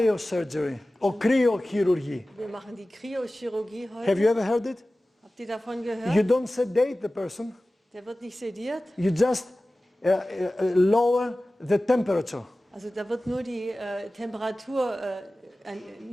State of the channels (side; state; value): both; normal; correlation 0.96